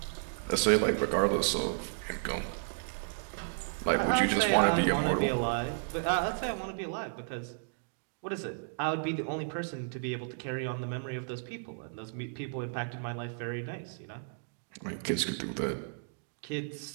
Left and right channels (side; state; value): left; silent; digital silence